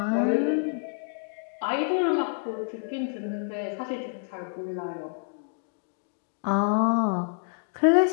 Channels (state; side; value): silent; right; digital silence